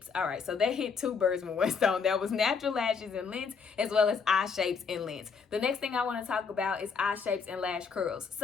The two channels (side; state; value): right; quieter; 5.6 dB